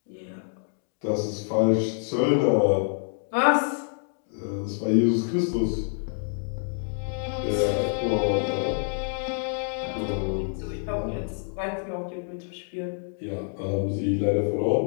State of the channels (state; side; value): silent; right; 60 dB below the other